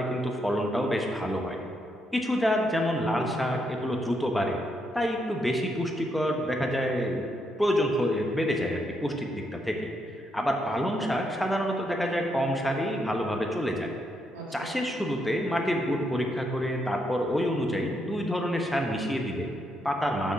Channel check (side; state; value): both; normal; correlation 0.78